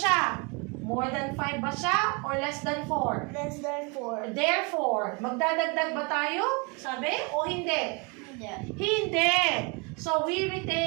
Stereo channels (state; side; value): quieter; left; 31.6 dB